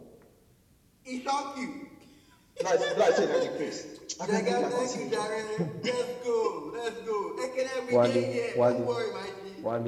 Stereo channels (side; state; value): both; identical; correlation 1.00